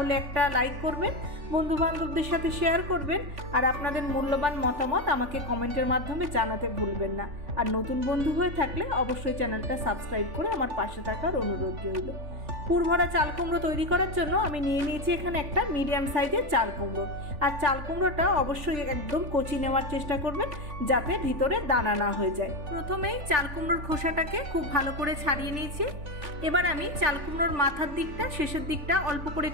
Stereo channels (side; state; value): left; late; 3.5 ms